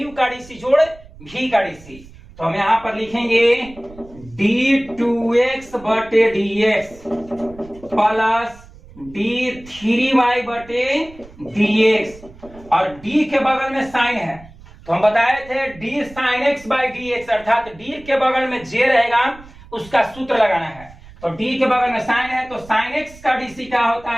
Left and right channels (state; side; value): noise; right; rumble, 21 dB below the sound